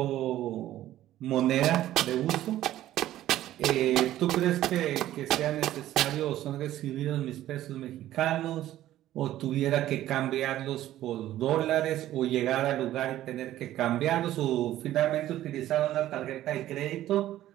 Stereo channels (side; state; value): left; quieter; 13.7 dB